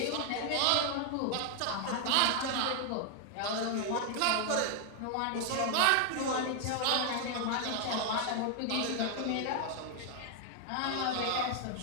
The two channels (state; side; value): different; both; correlation 0.00